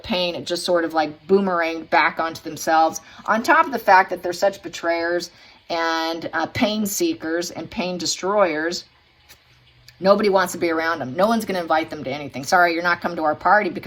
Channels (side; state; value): both; identical; correlation 1.00